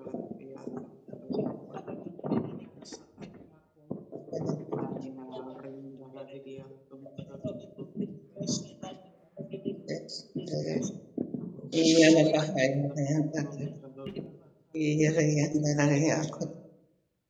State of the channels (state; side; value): identical; both; correlation 1.00